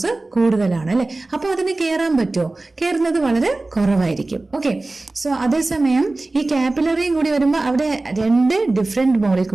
കൂടുതലാണ് അല്ലെ, അപ്പൊ അതിന് കയറാൻ പറ്റുമോ? കയറുന്നത് വളരെ കുറവായിരിക്കും. ഓക്കെ, സോ അതേസമയം ഈ കാപ്പിലറിയും കൂടി വരുമ്പോൾ അവിടെ രണ്ട് ഡിഫറെന്റ്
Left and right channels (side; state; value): left; quieter; 3.1 dB